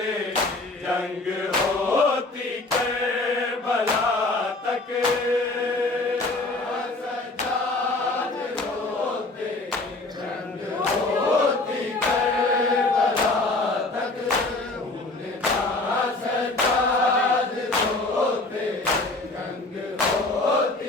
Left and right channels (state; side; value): quieter; right; 3.0 dB